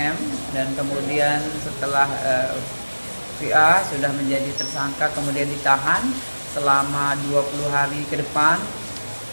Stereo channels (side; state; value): both; inverted; correlation -1.00